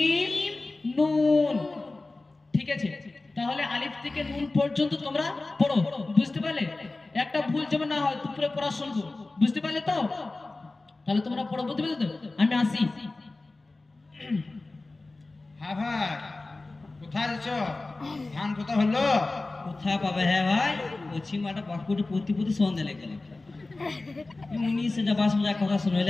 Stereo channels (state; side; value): quieter; right; 3.2 dB